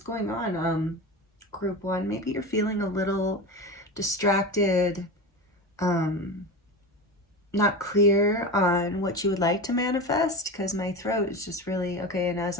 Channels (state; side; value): normal; both; correlation 0.25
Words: on, Group 1. Maybe you're feeling a little distracted, not clear on what you would like to manifest, because my throat is just really, okay, and